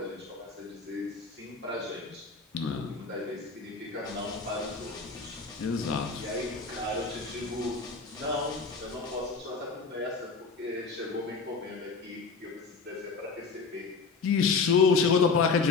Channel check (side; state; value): right; quieter; 4.7 dB